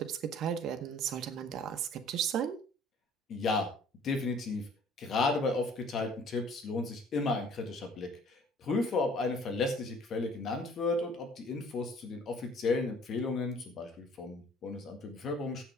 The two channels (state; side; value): normal; both; correlation 0.54